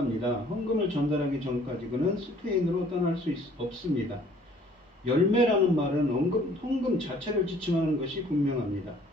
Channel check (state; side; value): normal; both; correlation 0.56